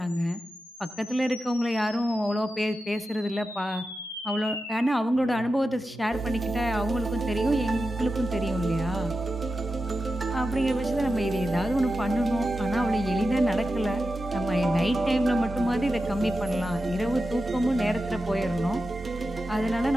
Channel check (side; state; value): both; normal; correlation 0.91